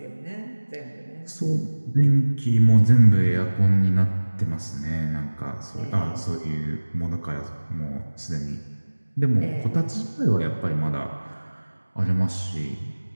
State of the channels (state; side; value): inverted; both; correlation -1.00